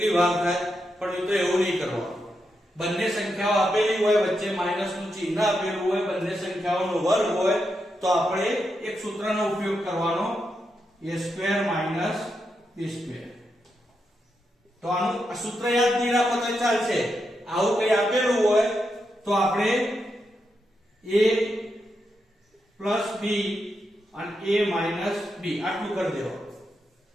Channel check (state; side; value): normal; both; correlation 0.84